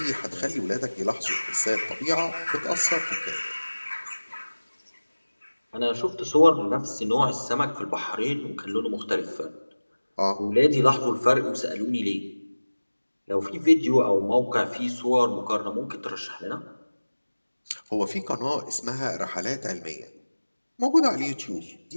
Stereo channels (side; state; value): both; inverted; correlation -1.00